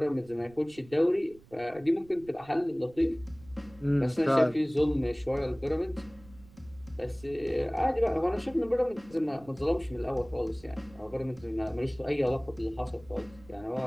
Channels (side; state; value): right; noise; rumble, 23 dB below the sound